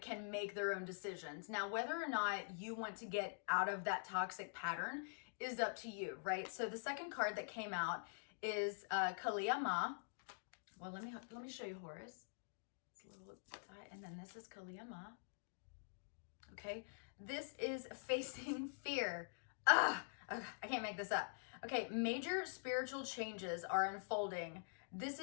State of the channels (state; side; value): silent; right; digital silence